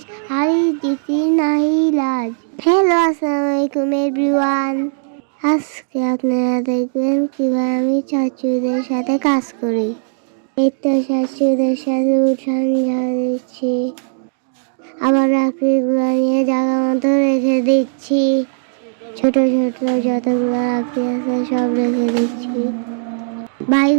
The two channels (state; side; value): silent; left; digital silence